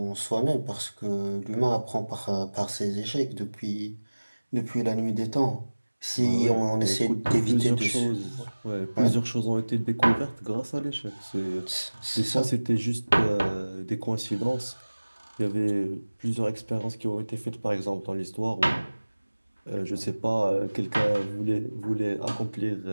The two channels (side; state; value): both; inverted; correlation -1.00